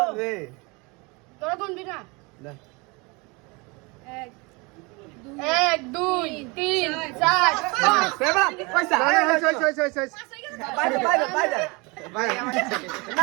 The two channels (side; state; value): left; quieter; 27.3 dB